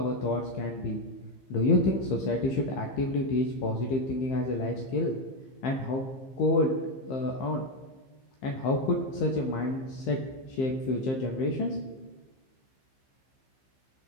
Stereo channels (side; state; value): right; late; 15 ms